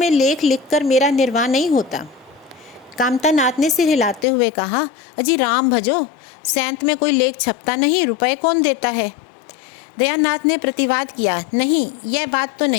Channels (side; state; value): right; drops out; at 4.2 s